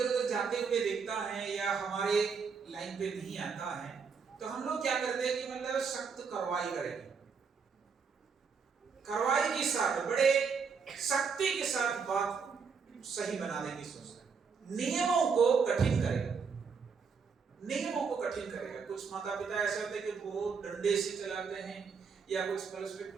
उधर जाते हुए देखता है या हमारे लाइन पे नहीं आता है, तो हम लोग क्या करते हैं कि मतलब सख्त कार्रवाई करेंगे, कार्रवाई के साथ, बड़े सख्ती के साथ बात सही बनाने की सोचते हैं, नियमों को कठिन करेगा, नियमों को कठिन करेगा। कुछ माता पिता ऐसे होते हैं कि बहुत डंडे से चलाते हैं, या कुछ पर्सपेक्ट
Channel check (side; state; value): left; quieter; 5.7 dB